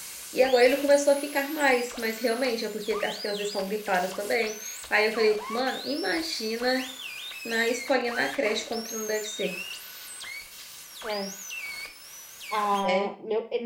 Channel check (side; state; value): both; identical; correlation 1.00